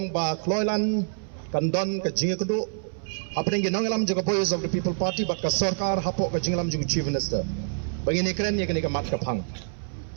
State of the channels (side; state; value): left; silent; 61 dB below the other